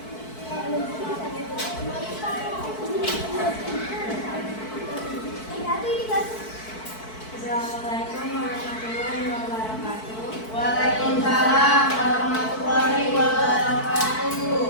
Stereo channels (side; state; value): right; late; 4.6 ms